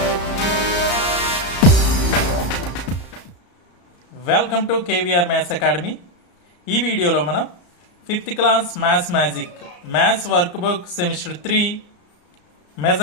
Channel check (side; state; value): right; late; 34 ms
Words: Welcome to KVR maths academy. ఈ వీడియోలో మనం 5th class maths magic maths workbook semester 3